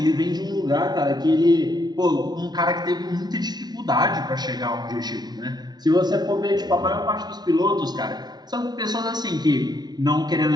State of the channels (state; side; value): late; left; 0.20 ms